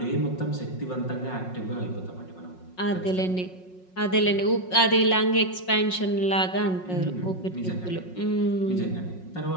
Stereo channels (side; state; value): right; late; 5.5 ms